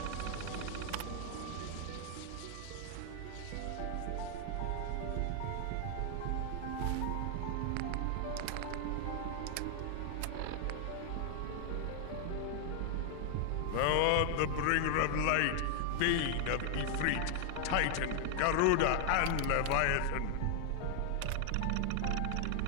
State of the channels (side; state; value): both; different; correlation 0.00